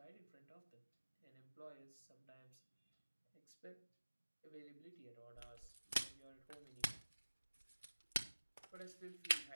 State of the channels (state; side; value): inverted; both; correlation -1.00